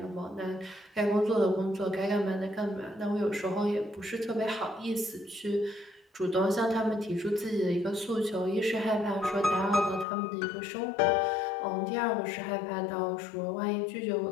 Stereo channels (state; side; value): drops out; right; at 10.1 s